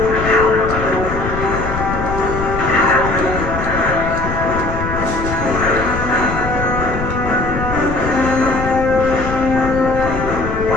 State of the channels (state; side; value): noise; left; rumble, 6 dB below the sound